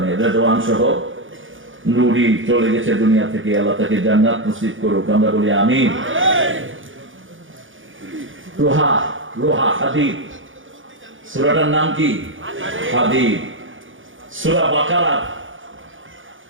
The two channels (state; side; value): late; left; 0.57 ms